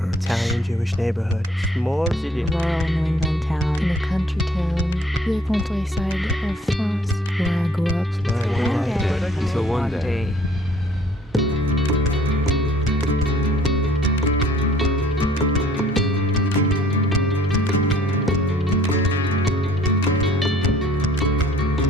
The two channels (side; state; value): both; normal; correlation 0.57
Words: Italian Jewish neighborhood. Small city. Rural New England town. In a country town. The countryside of France. Where I grew up. Until one day.